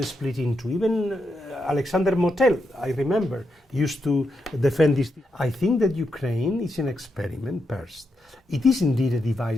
split in two. Even Alexander Motel, I remember, used to defend this. I think that Ukraine is an experiment first. It is indeed a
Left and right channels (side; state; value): both; normal; correlation 0.83